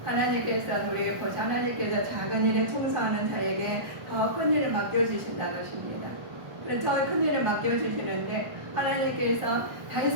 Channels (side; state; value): left; late; 1.1 ms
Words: 하나님께서 작은 일에 충성하는 자에게 더 큰 일을 맡겨주신다는 것입니다. 그래서 더 큰 일을 맡겨주시는데 하나님께서